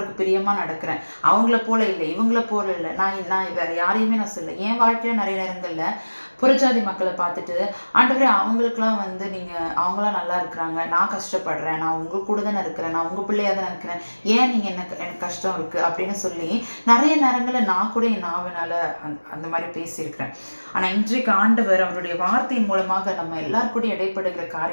பிரியமாக நடக்கிறேன், அவங்கள போல இல்லை, இவங்கள போல இல்லை, நான் வேற யாரையுமே நான் சொல்ல. என் வாழ்க்கையில நிறைய நேரங்கள்ல புறஜாதி மக்களை பார்த்துட்டு ஆண்டவரே அவங்களுக்குலாம் நீங்கள் அவங்களாம் நல்லா இருக்கிறாங்க, நான் கஷ்டப்படுறேன், நான் உங்க கூட தானே இருக்கிறேன், நான் உங்கள் பிள்ளையாக தானே இருக்கிறேன், ஏன் நீங்கள் எனக்கு கஷ்டம் இருக்குது அப்படின்னு சொல்லி நிறைய நேரங்களில் நான் கூட என் நாவனால அந்த மாதிரி பேசியிருக்கிறேன். ஆனால் இன்றைக்கு ஆண்டவர் அவருடைய வார்த்தையின் மூலமாக நம்ம எல்லாருக்கூட இடைப்படுகிற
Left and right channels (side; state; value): both; inverted; correlation -1.00